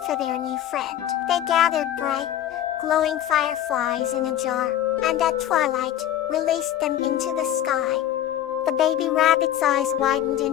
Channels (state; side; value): quieter; right; 11.7 dB